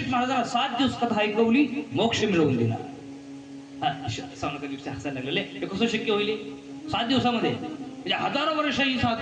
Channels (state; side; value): identical; both; correlation 1.00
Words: महाराजांना 7 दिवस कथा ऐकवली, मोक्ष मिळवून दिला. शौनकादिक हसायला लागलेले, हे कसं शक्य होईल 7 दिवसामध्ये? म्हणजे हजारो वर्ष ही